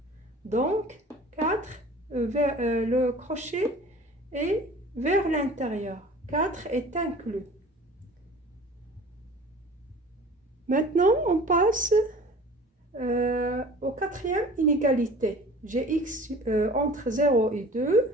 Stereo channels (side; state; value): both; normal; correlation 0.44